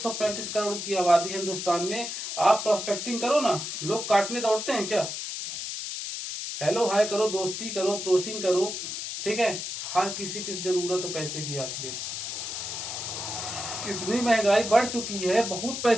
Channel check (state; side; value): noise; left; hiss, 5 dB below the sound